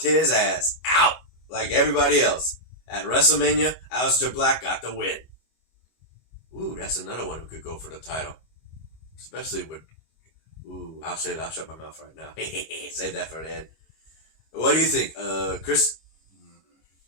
his ass out like everybody else. At WrestleMania, Aleister Black got the win. Ooh, that's another one who could go for the title. Especially with... Ooh, I'll shut my mouth right now. Save that for the end. What do you think, Chris?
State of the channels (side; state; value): right; late; 25 ms